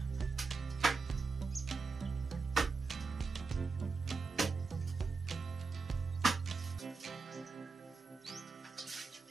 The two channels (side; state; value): left; quieter; 4.3 dB